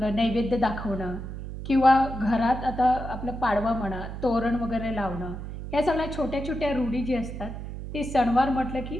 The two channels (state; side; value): noise; right; hum, 8 dB below the sound